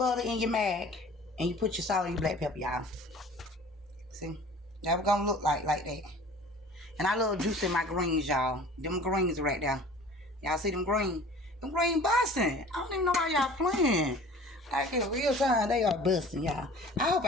in your mag, and you put your salt and your black pepper, y'all. See? That was gonna look like that. And I love juicing my greens, y'all. Them greens right there. Y'all see them green? Them green busting. I don't even know why y'all playing. Like in real time, they are busting, y'all. I hope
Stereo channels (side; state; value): both; normal; correlation 0.45